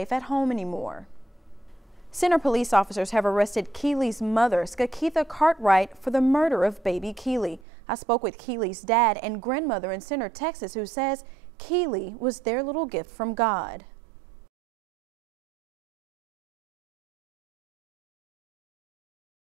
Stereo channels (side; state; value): left; drops out; at 7.6 s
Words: at home anymore. Center police officers have arrested Keely's mother, Skakitha Cartwright, for the murder of baby Keely. I spoke with Keely's dad and grandmother in Center, Texas, who says Keely was their little gift from God. In the wake of the Newtown Elementary School shooting, gun control and overall school safety are at the